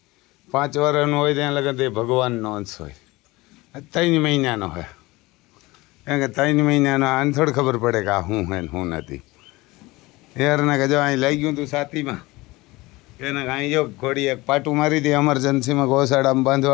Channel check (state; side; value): quieter; right; 21.3 dB